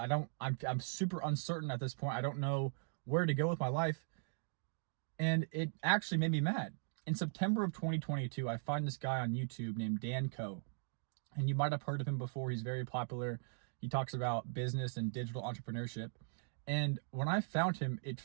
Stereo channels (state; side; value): silent; left; digital silence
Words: I'm super uncertain at this point. I don't know where to go with my life. And it actually made me mad. In September of 2022, I find this guy on YouTube named Dan Coe. And you might have heard of him before. He's very popular. He talks about business and digital entrepreneurship. And when I found him, it